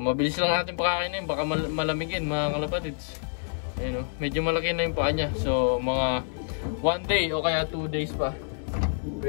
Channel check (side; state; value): right; silent; digital silence